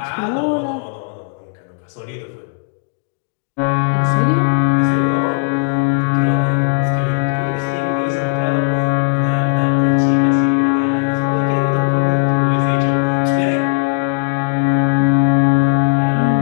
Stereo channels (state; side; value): silent; right; digital silence